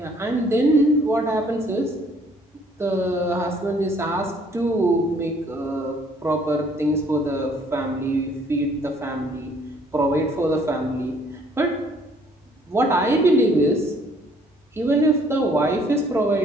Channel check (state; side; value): normal; both; correlation 0.61